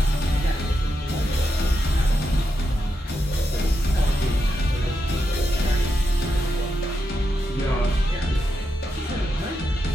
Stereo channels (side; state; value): both; normal; correlation 0.85